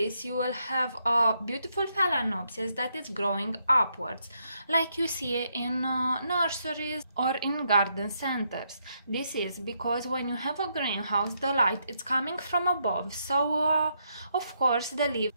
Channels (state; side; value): inverted; both; correlation -0.77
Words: you will have a beautiful phalaenopsis that is growing upwards, like you see in nurseries or in garden centers. This is because when you have a greenhouse, the light is coming from above, so of course the leaves